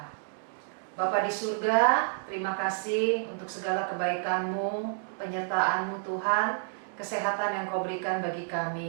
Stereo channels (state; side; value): silent; left; digital silence